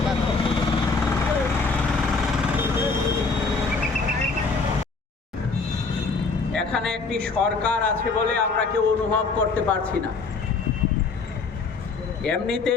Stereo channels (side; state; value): right; quieter; 4.3 dB